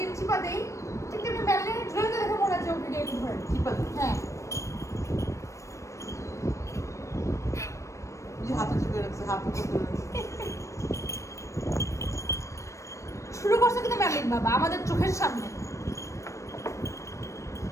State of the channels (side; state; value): right; late; 0.15 ms